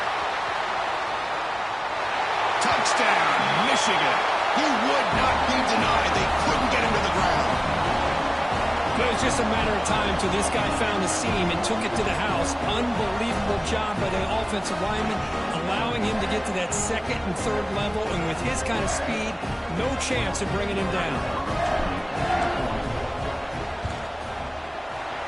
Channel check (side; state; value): both; identical; correlation 1.00